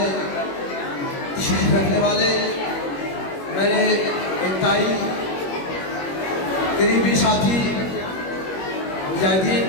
تشریف رکھنے والے میرے انتہائی قریبی ساتھی مجاہدین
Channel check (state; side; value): late; right; 21 ms